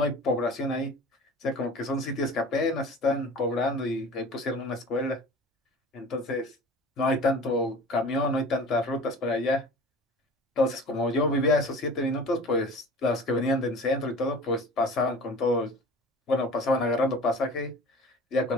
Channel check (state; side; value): normal; both; correlation 0.40